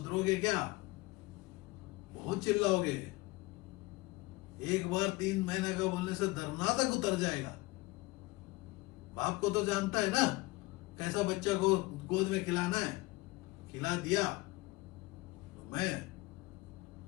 क्या? बहुत चिल्लाओगे। एक बार 3 महीने का बोलने से धरना तक उतर जाएगा। बाप को तो जानता है ना कैसा बच्चा को गोद में खिलाना है, खिला दिया। तो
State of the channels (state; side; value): quieter; right; 22.1 dB